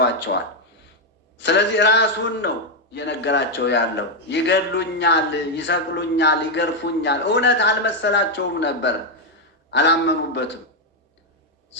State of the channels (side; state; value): both; normal; correlation 0.03